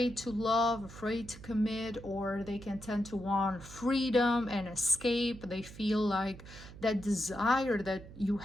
to love, afraid to commit, or they can tend to want freedom and escape. They feel like that desire that you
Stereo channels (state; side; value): noise; right; hum, 16 dB below the sound